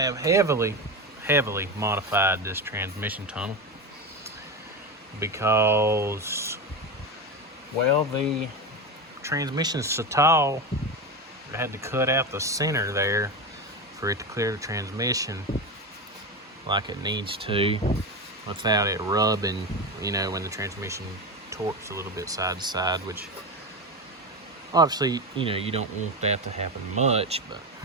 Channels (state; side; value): normal; both; correlation 0.19